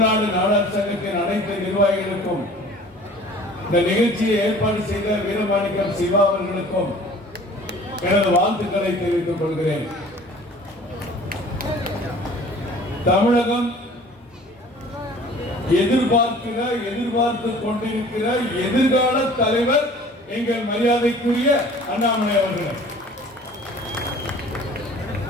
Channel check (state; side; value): normal; both; correlation 0.48